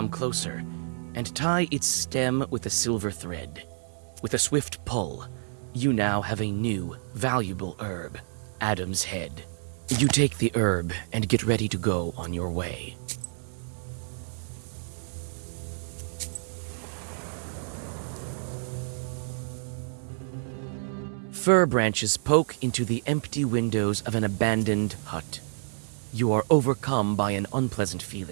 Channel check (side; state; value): left; silent; digital silence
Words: closer and tie its stem with a silver thread. With a swift pull, you now have a new, valuable herb, Adam's Head. You take the herb and get ready to go on your way. Fir branches poke into the empty windows of an abandoned hut. You are overcome by an unpleasant